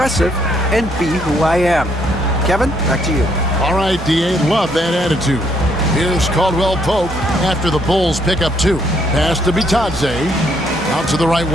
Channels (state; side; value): normal; both; correlation 0.70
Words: and be who I am. Kevin, back to you. All right, D.A., love that attitude. Here's Caldwell Pope after the Bulls pick up 2. Pass to Bitadze. Out to the right